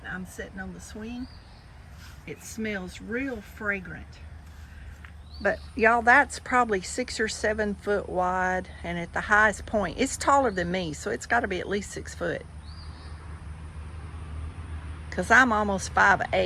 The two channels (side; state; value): both; identical; correlation 1.00